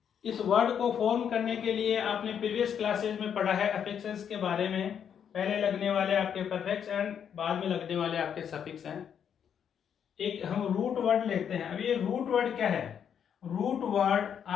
इस वर्ड को फॉर्म करने के लिए आपने प्रीवियस क्लासेज में पढ़ा है अफिक्सेस के बारे में। पहले लगने वाले आपके परफेक्ट्स एंड बाद में लगने वाले आपके सफिक्स हैं। एक हम रूट वर्ड लेते हैं। अब ये रूट वर्ड क्या है? रूट वर्ड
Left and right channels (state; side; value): quieter; right; 8.2 dB